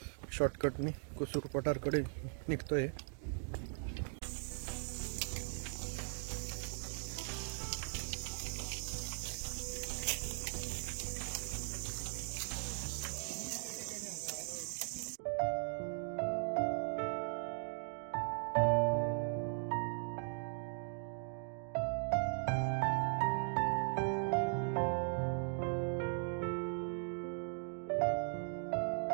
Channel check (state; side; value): silent; left; 52 dB below the other